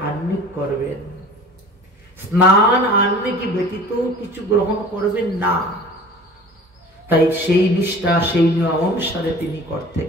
আহ্নিক করবেন। স্নান আহ্নিক ব্যতীত কিছু গ্রহণ করবেন না। তাই সেই নিষ্ঠা, সেই নিয়ম অনুসারে তিনি করতে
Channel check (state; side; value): normal; both; correlation 0.43